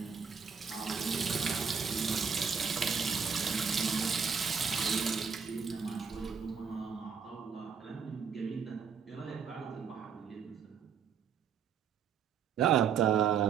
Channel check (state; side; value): quieter; left; 6.6 dB